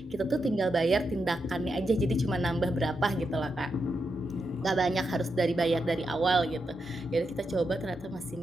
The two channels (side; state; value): both; normal; correlation 0.85